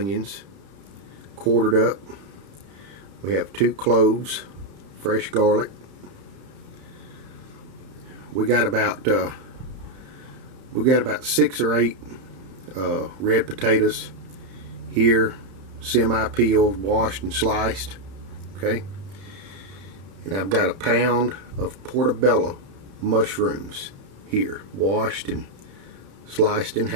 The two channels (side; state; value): left; late; 31 ms